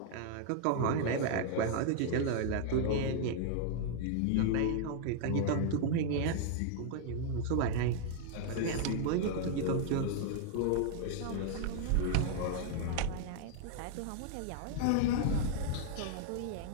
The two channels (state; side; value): different; both; correlation -0.01